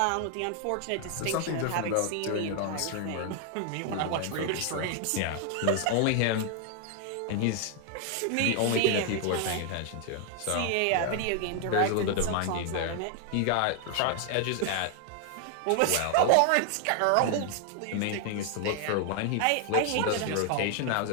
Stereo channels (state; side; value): different; both; correlation 0.00